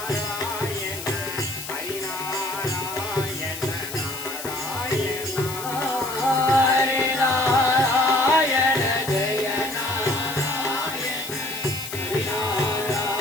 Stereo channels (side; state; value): left; noise; hiss, 9 dB below the sound